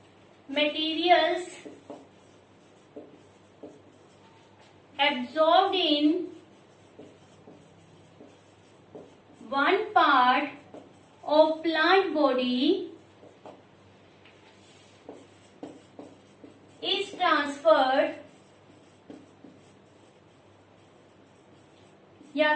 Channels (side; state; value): both; identical; correlation 1.00